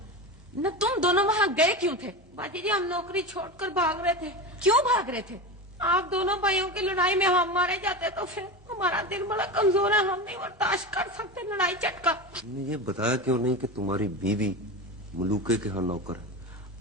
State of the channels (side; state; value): both; normal; correlation 0.23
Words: ना। तुम दोनों वहाँ गए क्यों थे? बाजी जी हम नौकरी छोड़कर भाग रहे थे। क्यों भाग रहे थे? आप दोनों भाइयों की लड़ाई में हम मारे जाते तो फिर हमारा दिल बड़ा कमजोर है, हम नहीं बर्दाश्त कर सकते लड़ाई झटका। तुमने ये बताया क्यों नहीं कि तुम्हारी बीवी मलूके के यहाँ नौकर है?